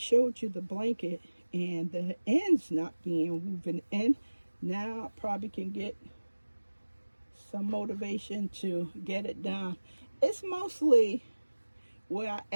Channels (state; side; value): inverted; both; correlation -1.00